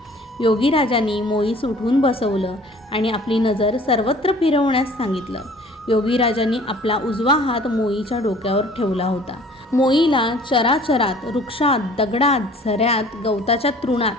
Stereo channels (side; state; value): both; normal; correlation 0.51